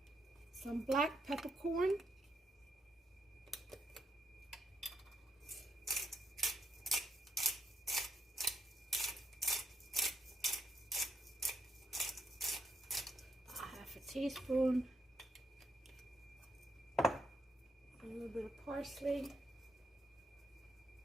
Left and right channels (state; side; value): normal; both; correlation 0.78